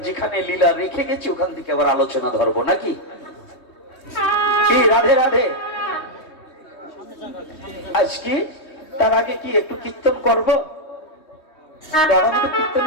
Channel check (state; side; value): late; right; 3.2 ms